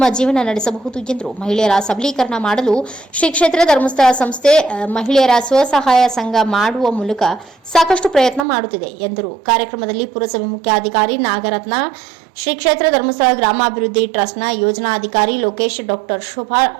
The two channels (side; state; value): left; drops out; at 8.5 s